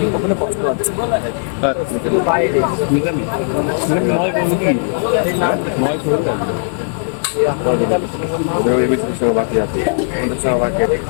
ওখানে কষ্ট আছে। মিতালি নয় বলতে কি নয় খোল লাগবে ওদের এবিসির সঙ্গে বাকি আছে, ওদের সঙ্গে বাকি আছে,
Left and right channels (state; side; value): silent; right; digital silence